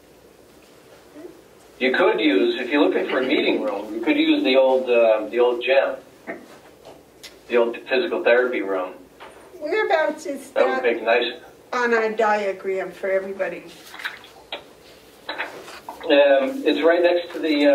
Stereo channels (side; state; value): both; identical; correlation 1.00